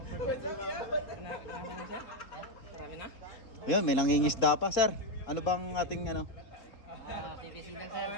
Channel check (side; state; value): right; late; 3.8 ms